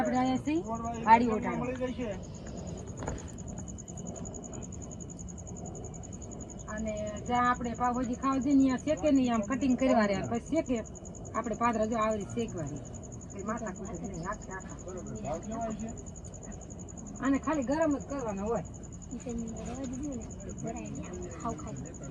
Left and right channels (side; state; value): both; identical; correlation 1.00